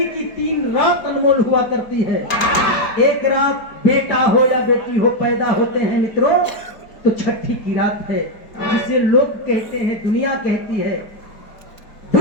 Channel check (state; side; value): late; right; 4.9 ms